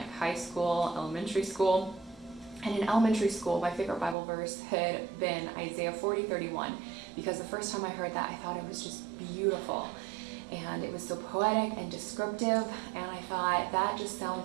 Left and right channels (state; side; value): drops out; left; at 4.2 s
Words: school, elementary school. And in elementary school, my favorite Bible verse had been Isaiah 40:31, because the first time I heard that, I thought it was just beautiful. And it was so poetic and descriptive, and I thought, that just